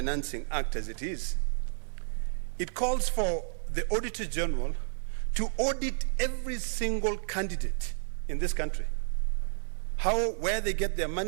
Act as it is, it calls for the Auditor General to audit every single candidate in this country. Where they get their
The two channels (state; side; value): silent; left; 57 dB below the other